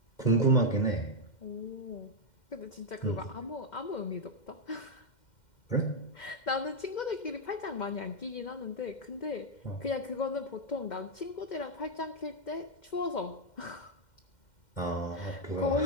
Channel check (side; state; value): right; late; 2.1 ms